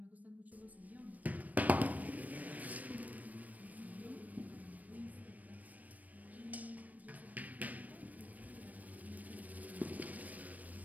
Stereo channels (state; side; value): late; left; 0.075 ms